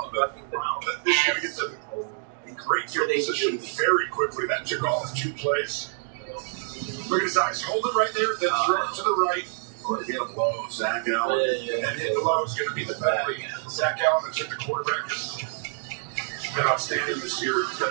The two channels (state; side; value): silent; left; digital silence